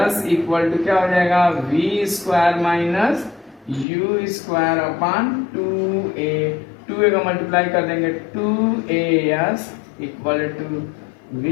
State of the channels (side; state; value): right; drops out; at 3.9 s